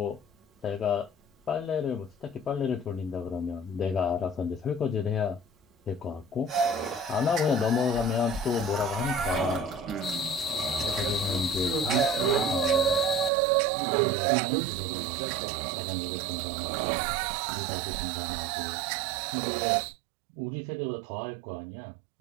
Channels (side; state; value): left; drops out; at 13.3 s